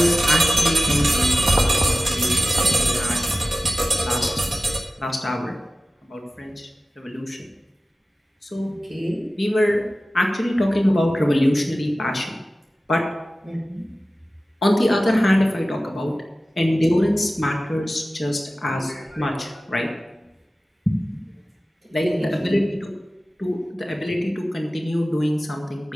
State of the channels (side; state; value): both; normal; correlation 0.96